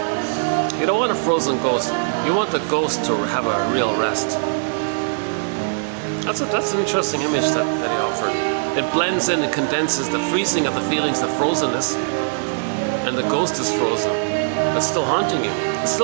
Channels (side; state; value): left; silent; digital silence